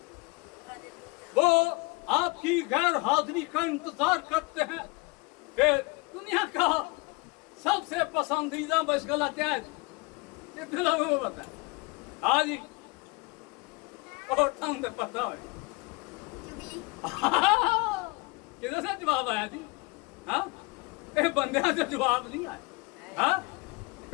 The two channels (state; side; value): quieter; right; 26.8 dB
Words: वो आपकी गैर हाजिरी का इंतजार करते हैं। फिर दुनिया का सबसे पसंदीदा मशगला क्या है? कितने लोगों को पता है? हाँ जी, और तो पता है। किधर से जवाब आया जी? हाँ, बंदे से जवाब नहीं आया। हाँ,